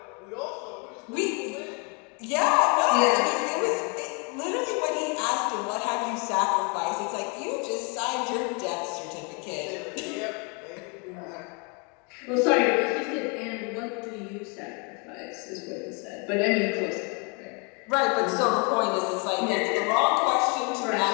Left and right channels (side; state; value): right; quieter; 33.7 dB